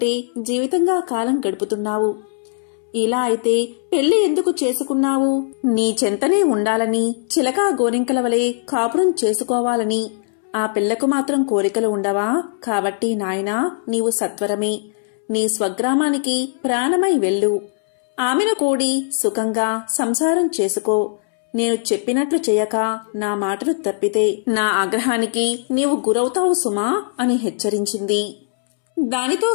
జీవితంగా కాలం గడుపుతున్నావు. ఇలా అయితే పెళ్లి ఎందుకు చేసుకున్నావు? నీ చెంతనే ఉండాలని, చిలకా గోరింకల వలె కాపురం చేసుకోవాలని ఆ పిల్లకు మాత్రం కోరికలు ఉండవా? కాబట్టి నాయనా, నీవు సత్వరమే నీ స్వగ్రామానికి ప్రాణమై వెళ్ళు. ఆమెను కూడి సుఖంగా సంసారం చేసుకో. నేను చెప్పినట్లు చేయక నా మాటలు తప్పితే నా ఆగ్రహానికి నీవు గురవుతావు సుమా అని హెచ్చరించింది. దానితో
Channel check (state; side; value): silent; right; 66 dB below the other